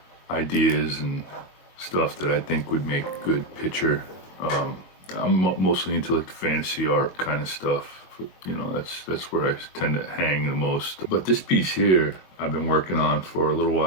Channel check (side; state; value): right; late; 22 ms